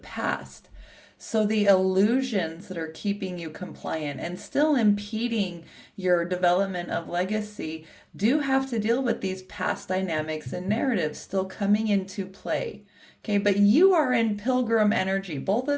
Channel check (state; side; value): identical; both; correlation 1.00